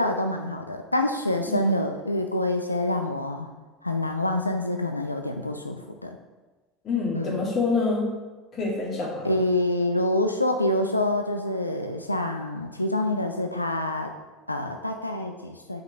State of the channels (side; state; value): both; inverted; correlation -0.46